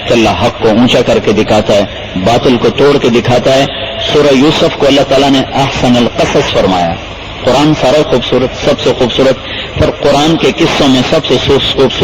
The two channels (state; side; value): identical; both; correlation 1.00